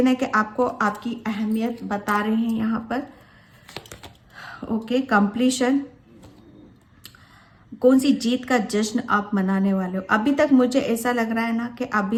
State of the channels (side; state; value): both; identical; correlation 1.00